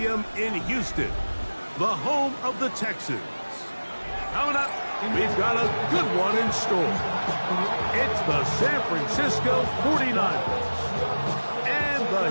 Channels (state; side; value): inverted; both; correlation -1.00